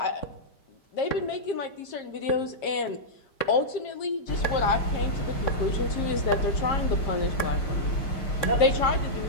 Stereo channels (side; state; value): right; late; 5.1 ms